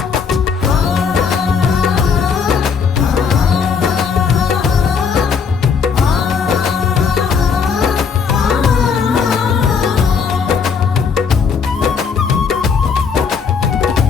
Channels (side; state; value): right; quieter; 5.9 dB